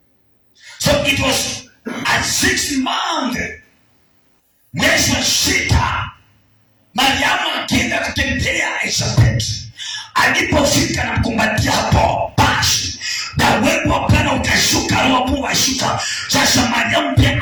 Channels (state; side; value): identical; both; correlation 1.00